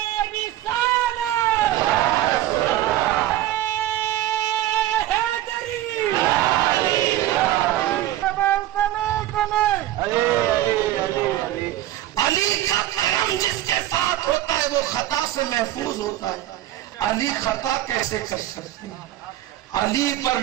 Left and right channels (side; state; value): left; quieter; 14.2 dB